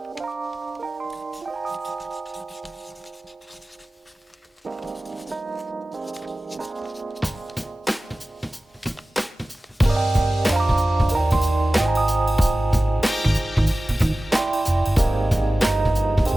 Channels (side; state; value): both; normal; correlation 0.96